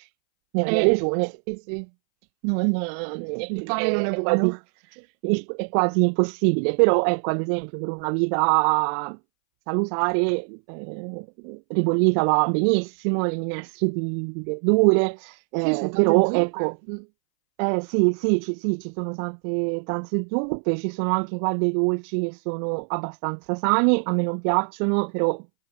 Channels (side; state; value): left; silent; 63 dB below the other